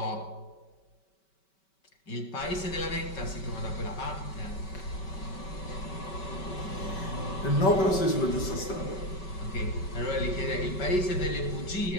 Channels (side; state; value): right; late; 5.2 ms